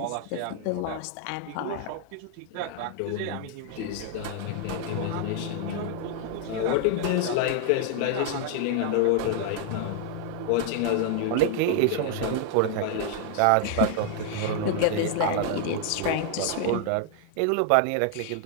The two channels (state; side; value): different; both; correlation 0.00